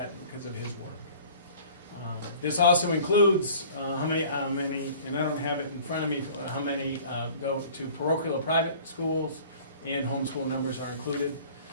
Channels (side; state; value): both; inverted; correlation -0.48